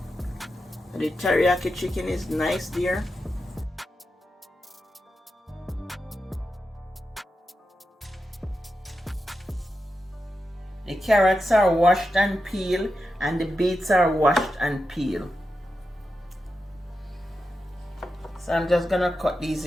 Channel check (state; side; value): normal; both; correlation 0.89